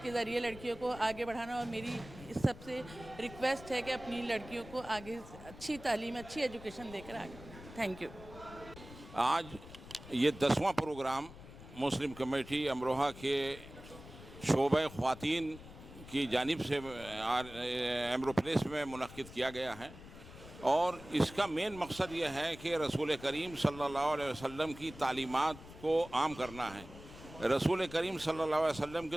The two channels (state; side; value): noise; left; rumble, 16 dB below the sound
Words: ज़रिए लड़कियों को आगे बढ़ाना, और मेरी इस सबसे रिक्वेस्ट है कि अपनी लड़कियों को आगे अच्छी तालीम, अच्छी एजुकेशन देकर आगे। Thank you. आज ये 10वां प्रोग्राम मुस्लिम कमेटी अमरोहा के शोबे ख्वातीन की जानिब से एम्ब्रोप्लेस में मुनक़्क़िद किया गया है और इसका मेन मकसद ये है कि रसूल करीम सल्लल्लाहु अलैहि वसल्लम की तालीमात को आम करना है। रसूल करीम सल्लल्लाहु अलैहि वसल्लम के